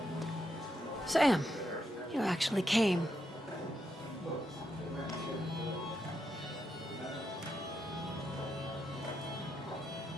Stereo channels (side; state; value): both; normal; correlation 0.82